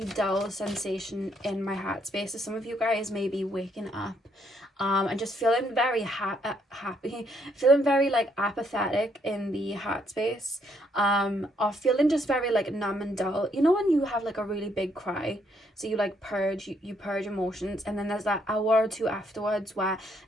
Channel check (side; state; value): both; normal; correlation 0.71